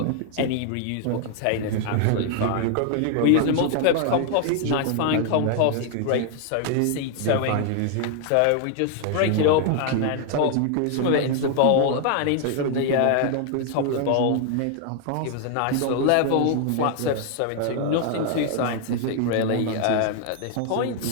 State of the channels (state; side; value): different; both; correlation 0.00